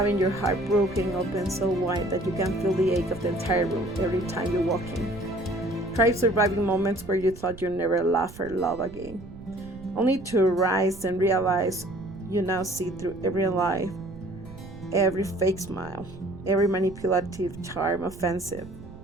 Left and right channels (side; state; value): right; noise; rumble, 16 dB below the sound